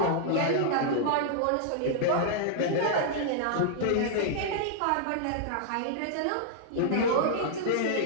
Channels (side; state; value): both; different; correlation -0.01